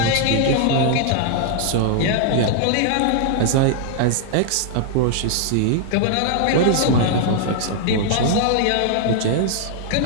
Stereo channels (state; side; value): different; both; correlation 0.00